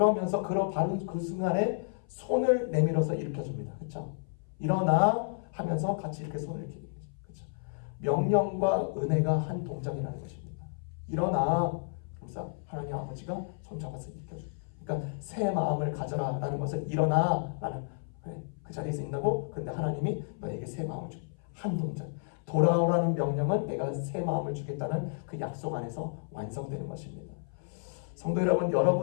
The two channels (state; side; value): silent; right; 56 dB below the other